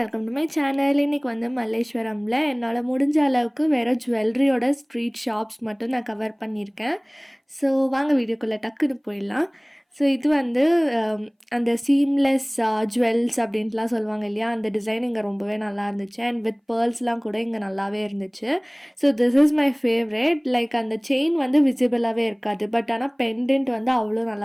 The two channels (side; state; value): both; identical; correlation 1.00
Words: welcome to my channel. இன்றைக்கி வந்து மல்லேஸ்வரமில் என்னால் முடிஞ்ச அளவுக்கு வேறு ஜுவல்லரியோட ஸ்ட்ரீட் ஷாப்ஸ் மட்டும் நான் கவர் பண்ணியிருக்கேன். ஸோ வாங்க வீடியோக்குள்ளே டக்குன்னு போயிடலாம். ஸோ இது வந்து அந்த சீம்லெஸ் ஜுவல்ஸ் அப்படின்ட்டுலாம் சொல்லுவாங்க இல்லையா, அந்த டிசைன் இங்கே ரொம்பவே நல்லா இருந்துச்சு. அண்ட் வித் பேர்ல்ஸ்லாம் கூட இங்கே நல்லாவே இருந்துச்சு. So this is my favourite. Like அந்த செயின் வந்து விசிபிளாகவே இருக்காது, பட் ஆனால் பெண்டன்ட் வந்து அவ்வளோ